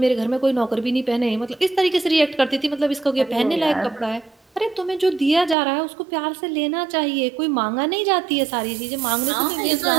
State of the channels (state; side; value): drops out; left; at 5.6 s